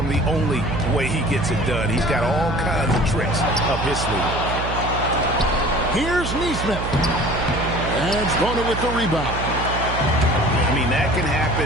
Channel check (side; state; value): right; noise; hum, 5 dB below the sound